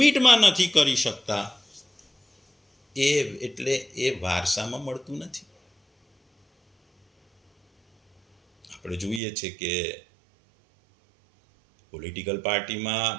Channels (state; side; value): drops out; left; at 9.2 s